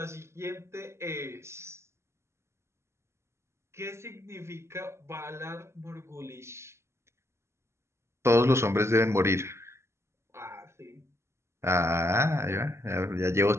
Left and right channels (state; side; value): late; left; 0.13 ms